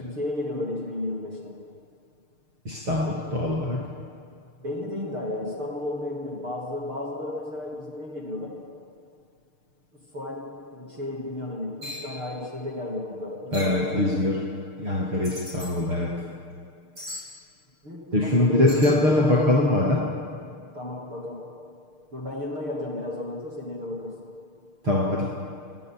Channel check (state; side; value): late; left; 6.6 ms